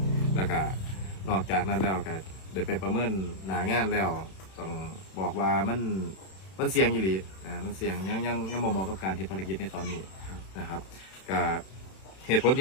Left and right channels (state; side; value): late; right; 31 ms